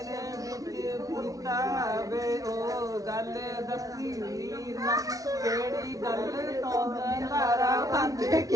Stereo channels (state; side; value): late; left; 0.17 ms